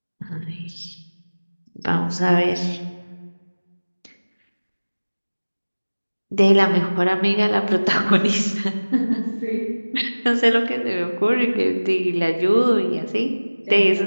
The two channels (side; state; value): both; inverted; correlation -1.00